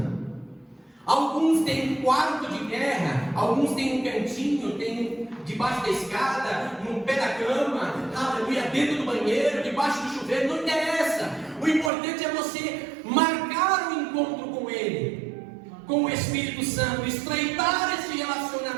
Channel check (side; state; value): left; drops out; at 11.9 s